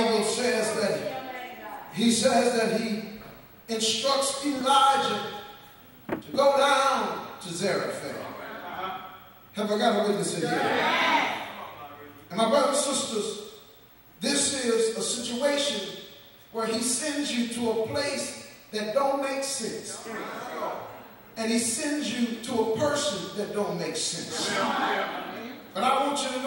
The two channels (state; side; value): identical; both; correlation 1.00